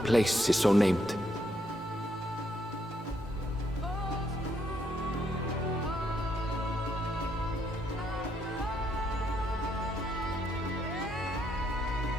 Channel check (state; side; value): normal; both; correlation 0.75